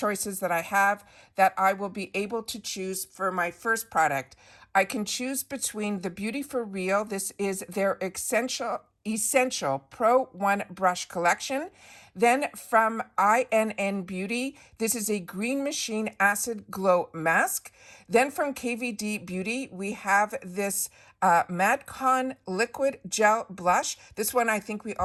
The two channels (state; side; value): identical; both; correlation 1.00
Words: that I have that I will be able to choose for my first product, I can choose between the Beauty for Real. This is their Essential Pro 1 brush collection. Then from INN Beauty, this is a Green Machine Acid Glow Mask. Then from KVD Beauty, we have this Madcon Liquid Gel Blush. This one I think we